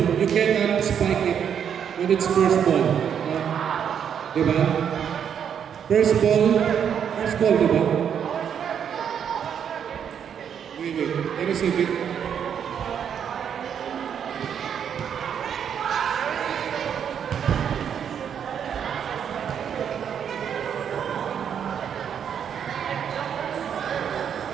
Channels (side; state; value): left; quieter; 8.2 dB